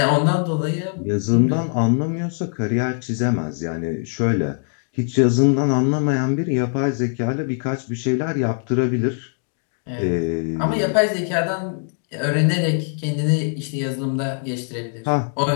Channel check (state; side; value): silent; right; 62 dB below the other